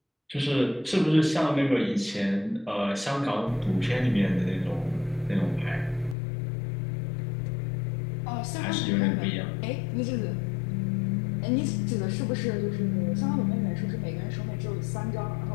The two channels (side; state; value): right; drops out; at 6.2 s